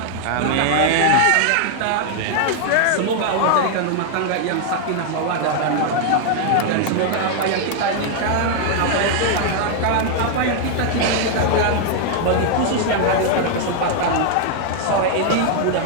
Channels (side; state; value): both; different; correlation 0.00